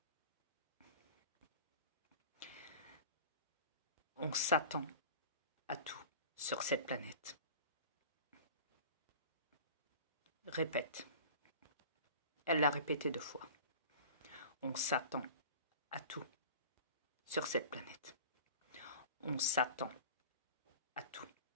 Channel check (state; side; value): inverted; both; correlation -0.39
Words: On s'attend à tout sur cette planète. Répète. Elle l'a répété 2 fois. On s'attend à tout sur cette planète. On s'attend à tout